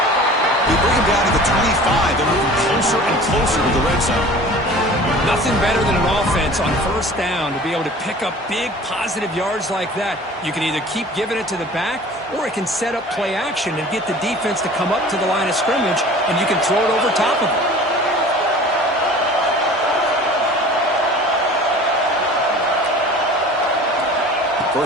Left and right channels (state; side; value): normal; both; correlation 0.43